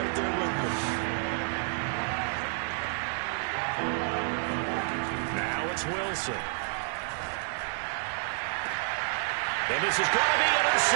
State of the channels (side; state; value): left; silent; 58 dB below the other